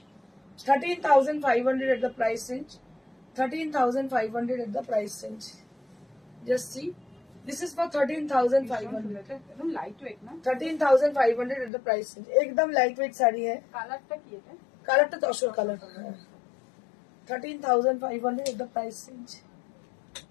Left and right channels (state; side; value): drops out; right; at 11.7 s